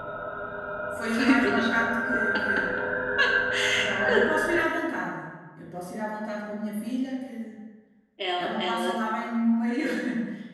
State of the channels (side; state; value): both; identical; correlation 1.00